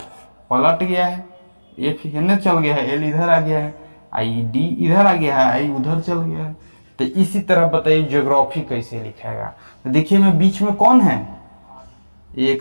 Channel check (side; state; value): both; inverted; correlation -1.00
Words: पलट गया है, F हिन्ने चल गया है, L इधर आ गया है, ID इधर आ गया है, I उधर चल गया है। तो इसी तरह बताइए ज्योग्राफी कैसे लिखेगा। तो देखिए मैं बीच में कौन है, 1